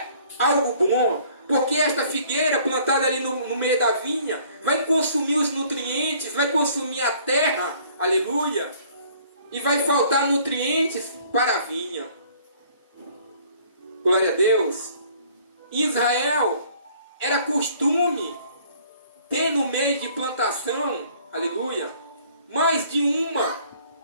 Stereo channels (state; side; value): inverted; both; correlation -0.57